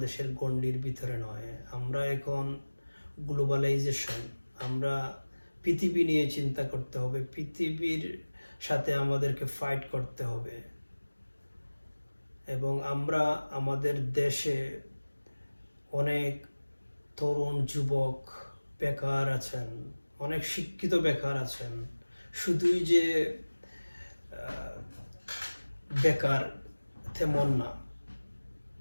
গণ্ডির ভিতরে নয়, আমরা এখন গ্লোবালাইজেশন, আমরা পৃথিবী নিয়ে চিন্তা করতে হবে, পৃথিবীর সাথে আমাদেরকে ফাইট করতে হবে। এবং আমরা আমাদের দেশে অনেক তরুণ যুবক বেকার আছেন, অনেক শিক্ষিত বেকার আছেন। শুধুই যে বেকার তেমন না,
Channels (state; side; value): inverted; both; correlation -1.00